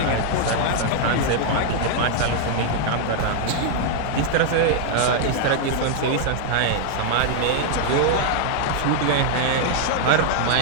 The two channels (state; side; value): different; both; correlation 0.00